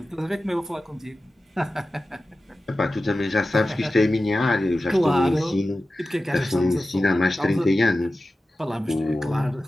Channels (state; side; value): normal; both; correlation 0.95